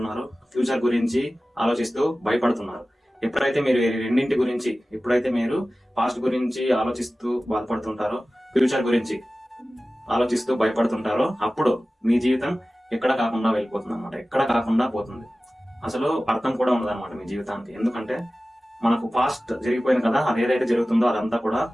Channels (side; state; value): both; normal; correlation 0.96